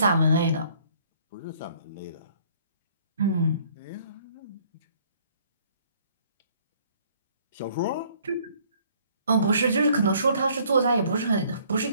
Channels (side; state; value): both; inverted; correlation -0.60